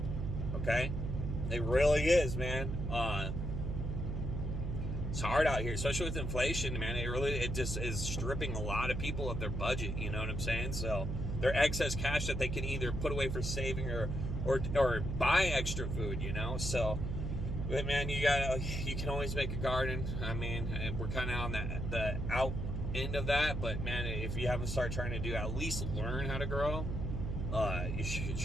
Okay? It really is, man. It's hard out here, especially with inflation, man. It just is stripping a lot of people of their budget. You know what I'm saying? So their excess cash that they can either put away for saving or buy extra food, you know? So, but man, you can always make a garden. I mean, we're kind of on the out end of that, but man, if you haven't started trying to do, at least learn how to grow, you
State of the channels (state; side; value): noise; right; hum, 3 dB below the sound